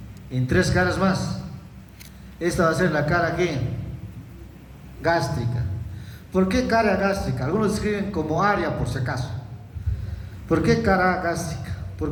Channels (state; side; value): identical; both; correlation 1.00